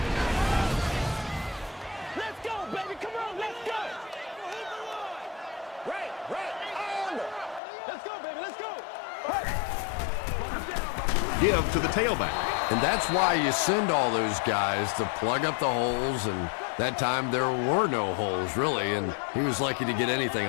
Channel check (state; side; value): drops out; right; at 7.6 s